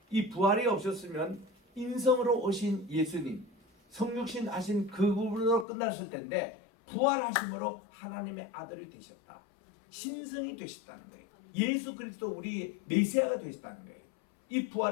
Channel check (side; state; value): right; drops out; at 5.7 s